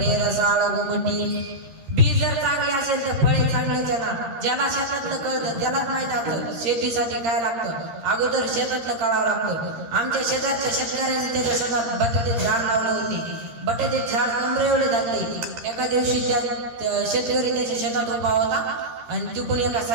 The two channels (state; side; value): late; left; 13 ms